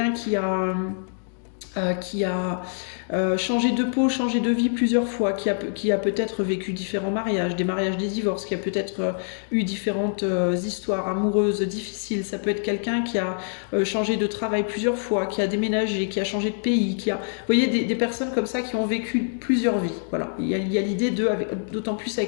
qui a changé de peau, changé de vie plusieurs fois, qui a peut-être vécu différents mariages, des mariages, des divorces, qui a peut-être eu différentes histoires amoureuses difficiles. Ça peut être quelqu'un qui a changé de travail plusieurs fois, qui a déménagé, qui a changé de pays, Vous voyez, des personnes comme ça qui ont vécu plusieurs vies. Voilà, il y a l'idée d'autant plus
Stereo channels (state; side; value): silent; right; digital silence